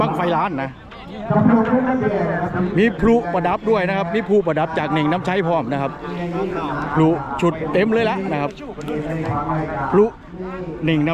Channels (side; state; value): both; identical; correlation 1.00